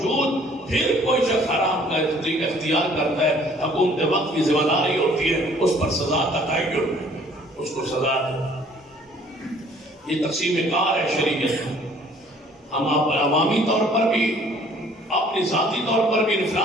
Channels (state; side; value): normal; both; correlation 0.56